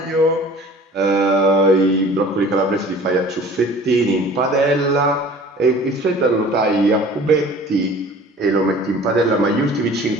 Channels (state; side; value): normal; both; correlation 0.47